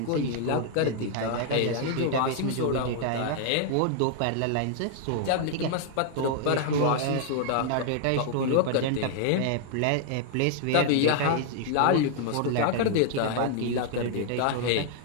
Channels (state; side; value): different; both; correlation 0.00